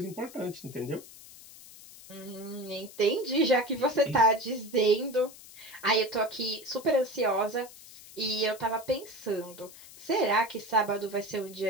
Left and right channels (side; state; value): left; noise; hiss, 18 dB below the sound